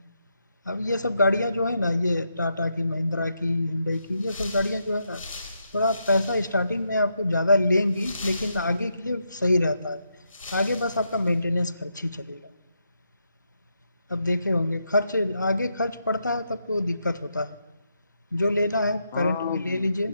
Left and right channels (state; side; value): inverted; both; correlation -0.81